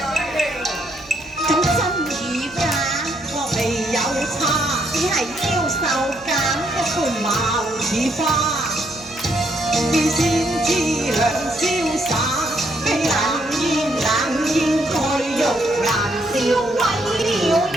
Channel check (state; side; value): noise; right; hum, 25 dB below the sound